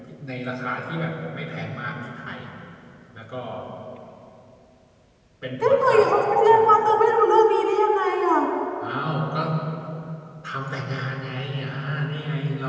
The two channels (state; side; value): identical; both; correlation 1.00